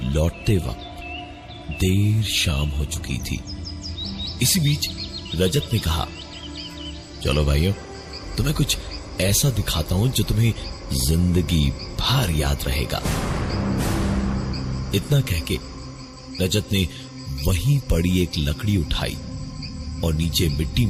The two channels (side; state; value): both; identical; correlation 1.00